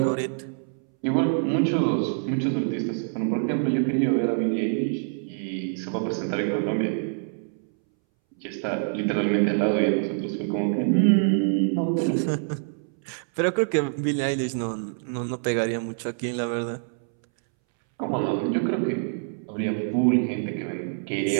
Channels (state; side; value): silent; left; 61 dB below the other